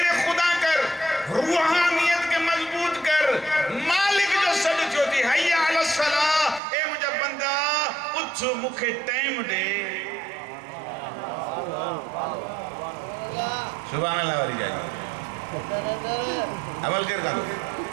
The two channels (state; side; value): drops out; left; at 6.6 s